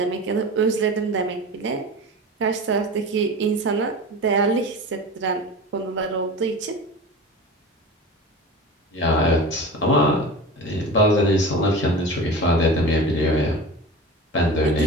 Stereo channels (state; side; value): normal; both; correlation 0.33